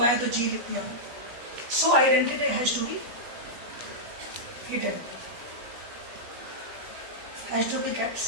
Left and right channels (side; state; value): left; late; 17 ms